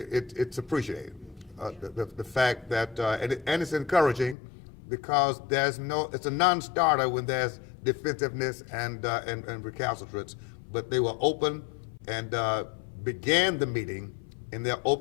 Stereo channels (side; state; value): right; drops out; at 4.4 s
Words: appreciated. The fact that and it's encouraging, because it's a non-starter when there's defensiveness and recalcitrance. But they were open and began the meeting in their